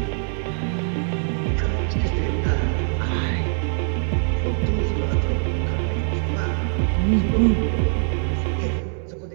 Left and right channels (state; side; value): silent; left; 63 dB below the other